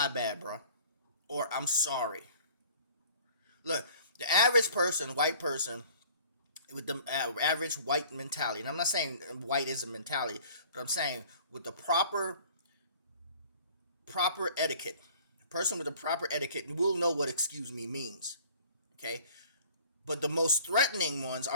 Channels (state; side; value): inverted; both; correlation -0.50